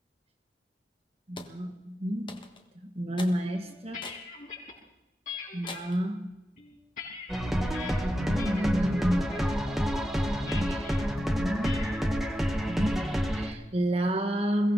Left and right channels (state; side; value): normal; both; correlation 0.89